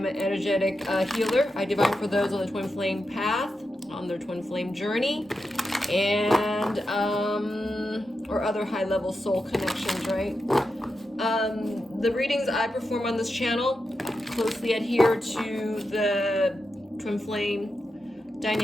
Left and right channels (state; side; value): normal; both; correlation 0.88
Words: an energetic healer. I divine for those on the Twin Flame path, on their Twin Flame journey, and or other high-level soul connections, right? The readings I perform on this channel closely adhere to the Twin Flame